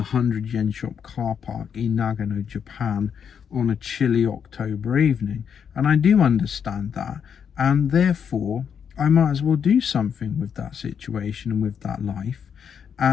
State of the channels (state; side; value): quieter; right; 7.5 dB